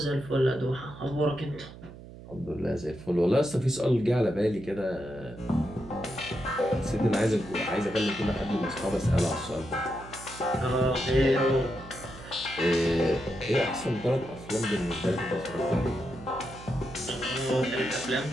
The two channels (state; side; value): noise; right; hum, 16 dB below the sound